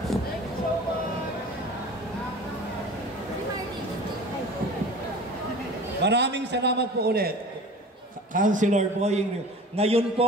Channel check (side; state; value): both; normal; correlation 0.40